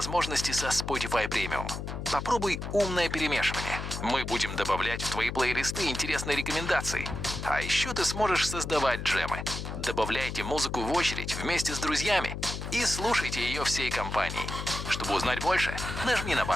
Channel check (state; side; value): noise; left; hum, 6 dB below the sound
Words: со Spotify Premium. Попробуй умное перемешивание. Мы будем добавлять в твои плейлисты интересные рекомендации. А еще ты сможешь создавать джемы. Добавляйте музыку в очередь вместе с друзьями и слушайте ее всей компанией. Чтобы узнать больше, нажми на